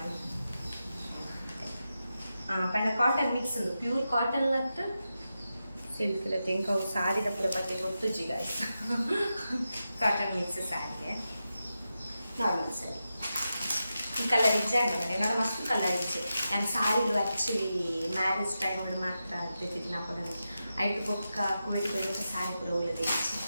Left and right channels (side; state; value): both; inverted; correlation -0.90